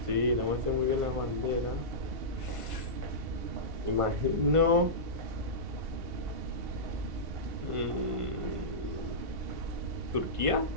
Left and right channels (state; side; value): late; left; 1.5 ms